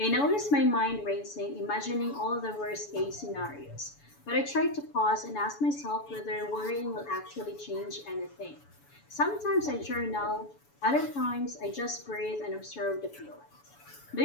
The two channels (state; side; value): late; right; 7.0 ms